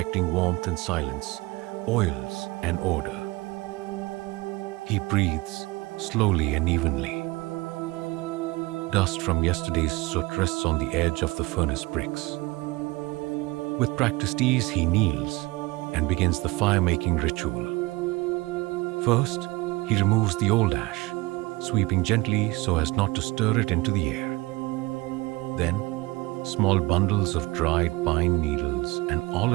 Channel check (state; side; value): quieter; left; 22.2 dB